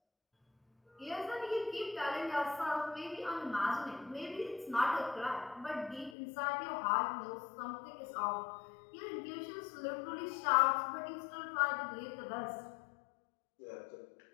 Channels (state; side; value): drops out; right; at 6.2 s